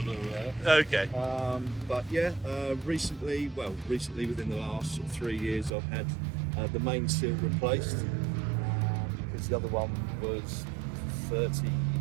Okay. But yeah, recently within the last sort of 3 years, I've had the main seal replaced because the other one was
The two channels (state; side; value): drops out; left; at 5.7 s